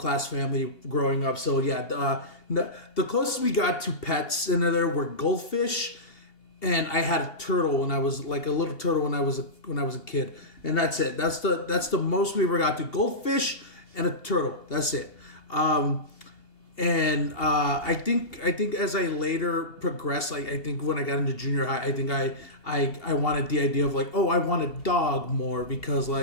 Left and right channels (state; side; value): late; right; 2.8 ms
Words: family growing up. So yeah, the closest we got to pets in there were goldfish. And I had a turtle when I was like a little turtle when I was a kid, and that's it. That's the most we ever got to. Goldfish and a turtle. That's it. And I think as I later progressed, like I think when I got into junior high, I think I wanted the idea of like, I want a dog more because